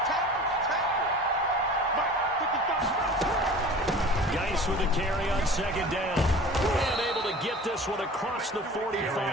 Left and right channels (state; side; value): normal; both; correlation 0.41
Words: Geis with a carry on 2nd down. And able to get this one across the